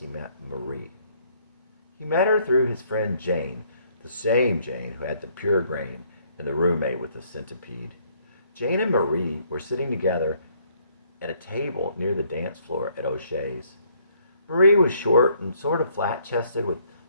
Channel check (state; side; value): inverted; both; correlation -0.66